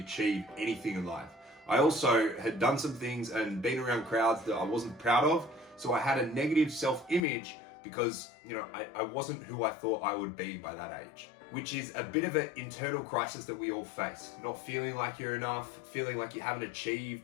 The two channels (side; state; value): right; drops out; at 7.2 s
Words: anything in life. I also had done some things and been around crowds that I wasn't proud of. So I had a negative self-image because, I wasn't who I thought I would be by that age, which is a bit of an internal crisis that we all face. Not feeling like you're enough, feeling like you haven't